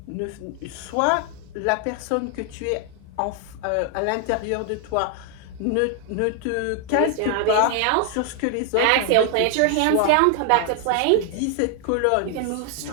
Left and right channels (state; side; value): different; both; correlation 0.00